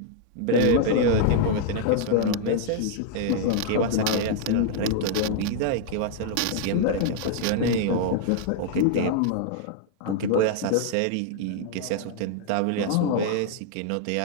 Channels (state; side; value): different; both; correlation 0.00